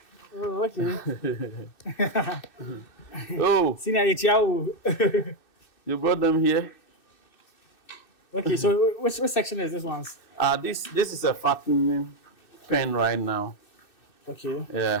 Oh, okay. Oh, Senior, you brought them here? Okay, so which section is this one? This is a fattening pen right now. Okay.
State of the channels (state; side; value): late; right; 2.6 ms